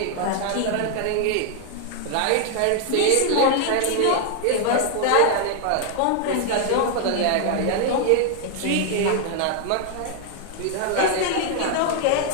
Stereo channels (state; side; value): different; both; correlation 0.00